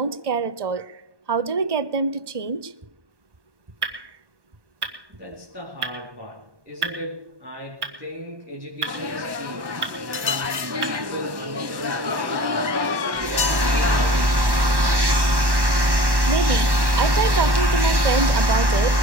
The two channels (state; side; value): late; left; 1.1 ms